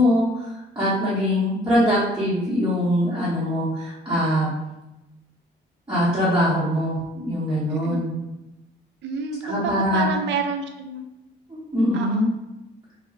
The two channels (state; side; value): normal; both; correlation 0.51